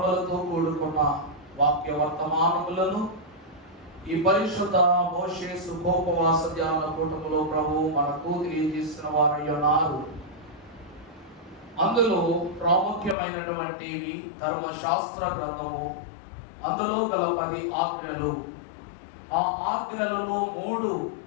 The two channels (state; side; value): drops out; right; at 13.2 s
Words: కూడుకున్న వాక్య వర్తమానములను ఈ పరిశుద్ధ మోషే సుఖోపవాస ధ్యాన కూటములో ప్రభు మనకు తెలియజేసిన వారై ఉన్నారు. అందులో ప్రాముఖ్యమైనటువంటివి ధర్మశాస్త్ర గ్రంథము, అందులో గల 10 ఆజ్ఞలు. ఆ ఆజ్ఞలలో 3